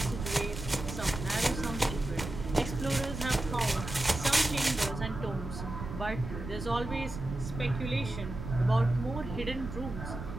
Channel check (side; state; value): right; noise; rumble, 8 dB below the sound